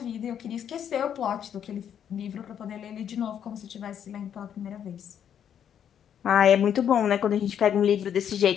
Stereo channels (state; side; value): quieter; right; 9.0 dB